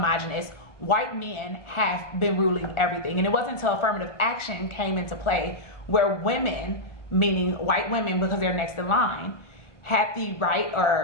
White men have been ruling everything. And it wasn't until affirmative action came into play where women, meaning white women because they're next in line, had the right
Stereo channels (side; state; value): right; late; 1.0 ms